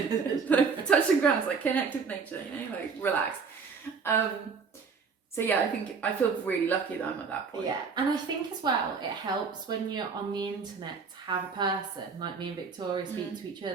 touch some grass, like, connect with nature, you know, like, relax. So yeah, I think I feel really lucky that I'm at that point. Yeah, and I think as well, it helps when you're on the internet to have a person like me and Victoria speak to each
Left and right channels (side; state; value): left; quieter; 5.4 dB